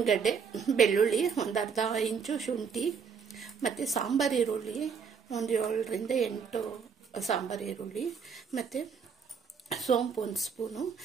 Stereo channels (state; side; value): quieter; left; 6.3 dB